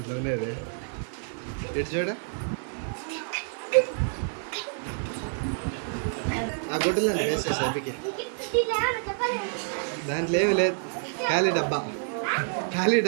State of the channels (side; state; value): left; silent; digital silence